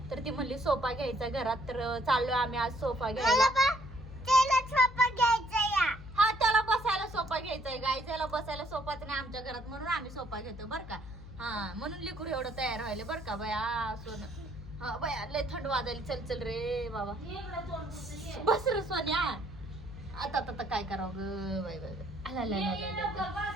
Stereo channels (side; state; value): left; noise; hum, 14 dB below the sound